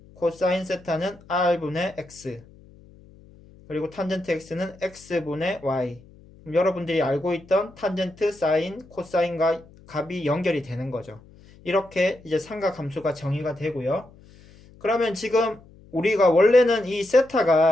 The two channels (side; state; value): left; noise; hum, 24 dB below the sound